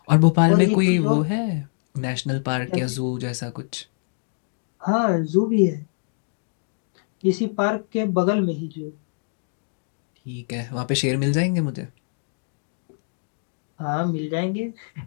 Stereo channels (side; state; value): right; silent; digital silence